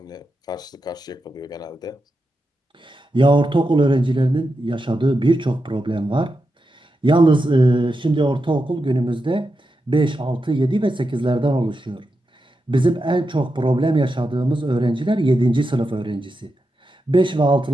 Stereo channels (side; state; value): both; normal; correlation 0.88